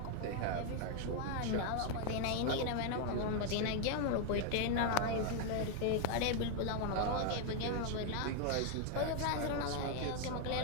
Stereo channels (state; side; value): different; both; correlation 0.01